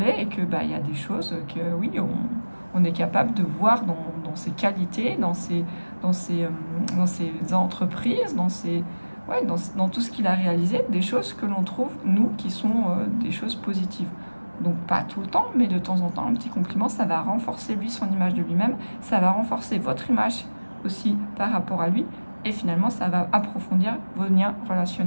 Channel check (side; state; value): both; inverted; correlation -1.00